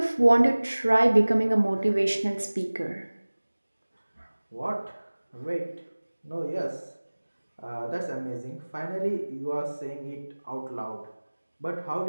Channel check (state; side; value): inverted; both; correlation -1.00